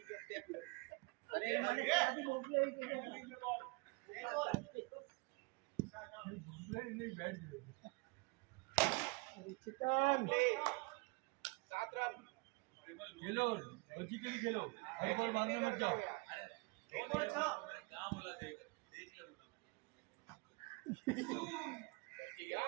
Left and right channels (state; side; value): quieter; left; 28.6 dB